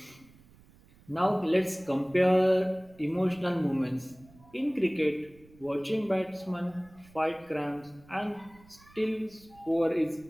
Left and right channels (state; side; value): noise; right; rumble, 26 dB below the sound